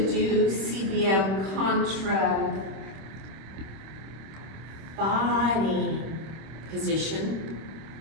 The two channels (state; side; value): late; left; 26 ms